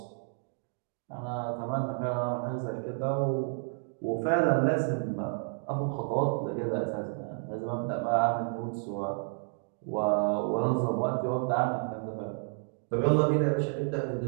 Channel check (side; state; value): left; silent; 57 dB below the other